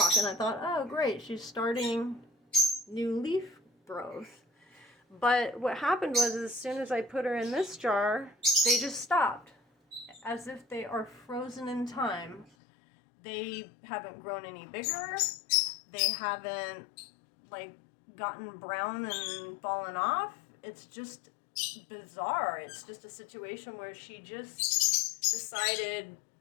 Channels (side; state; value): right; drops out; at 12.5 s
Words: And I thought, oh great, she's starting new leaf growth. But what happened was, as soon as I put her in this jar, they just stopped, as if they are frozen in time. They haven't grown any bigger. They haven't gotten brown and fallen off. It's just bizarre. It's just a situation where she just decided,